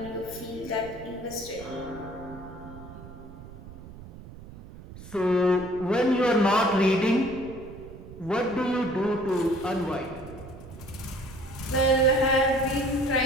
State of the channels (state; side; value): noise; right; rumble, 16 dB below the sound